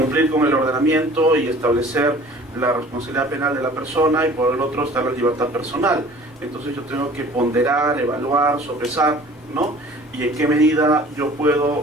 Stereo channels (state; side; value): normal; both; correlation 0.48